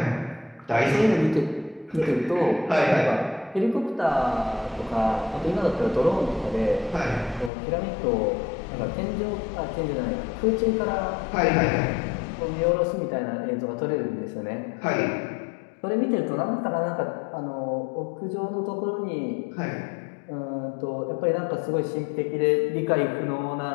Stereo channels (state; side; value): drops out; right; at 7.5 s